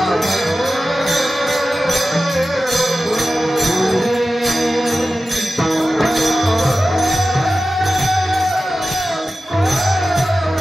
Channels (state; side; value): normal; both; correlation 0.94